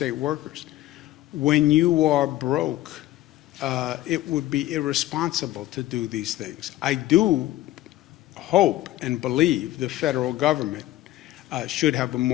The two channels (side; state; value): right; quieter; 15.4 dB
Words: workers? When you are broke, it would be irresponsible to do these things. I do hope and believe the federal government should have a